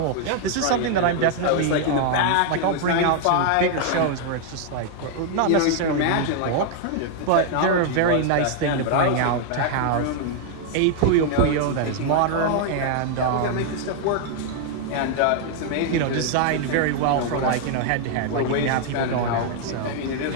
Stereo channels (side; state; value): both; different; correlation 0.00